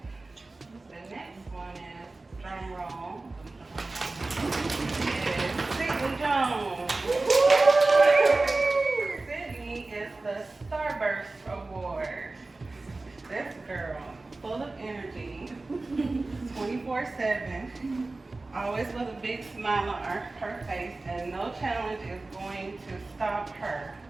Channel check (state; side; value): quieter; left; 3.3 dB